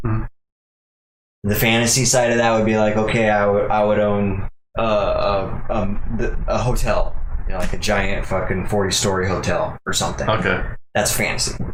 Mhm. the fantasy side of that would be like, okay, I would own a hotel, like a giant fucking 40-story hotel or something. Okay. That's fantasy.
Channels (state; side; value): identical; both; correlation 1.00